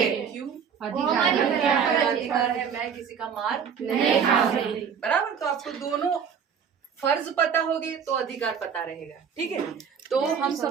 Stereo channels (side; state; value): left; quieter; 7.2 dB